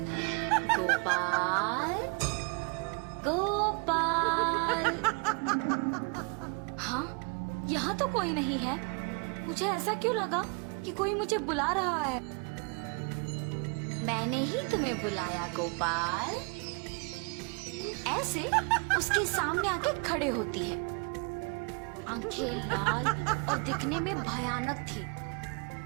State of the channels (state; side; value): quieter; left; 34.6 dB